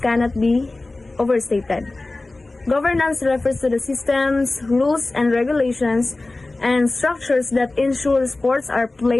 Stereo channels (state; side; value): quieter; right; 3.0 dB